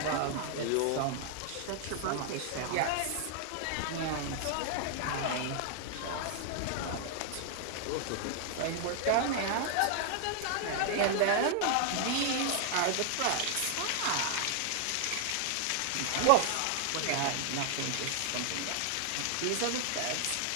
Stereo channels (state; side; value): different; both; correlation 0.00